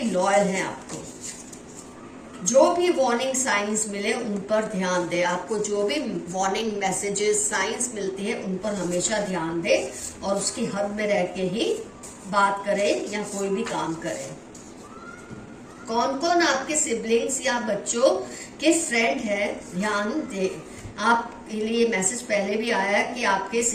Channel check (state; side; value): identical; both; correlation 1.00